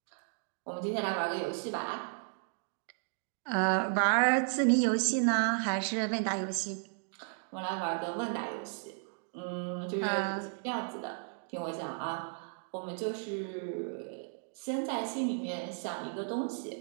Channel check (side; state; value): left; silent; 55 dB below the other